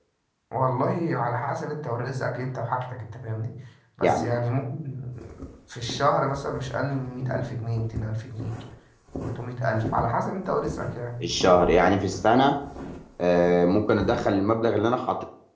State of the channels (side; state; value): both; identical; correlation 1.00